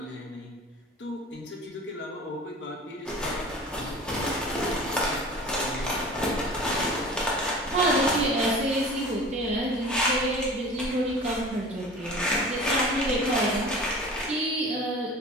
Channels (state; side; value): normal; both; correlation 0.40